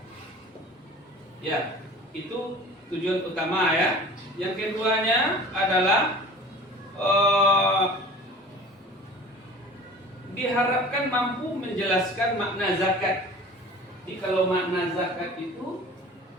Ya, itu tujuan utama ya. Yang keduanya adalah diharapkan mampu menjelaskan makna zakat. Jadi kalau makna zakat itu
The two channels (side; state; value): both; normal; correlation 0.42